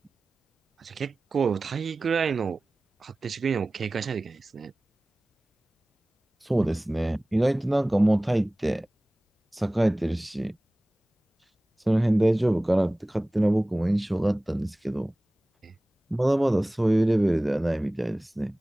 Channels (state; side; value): normal; both; correlation 0.98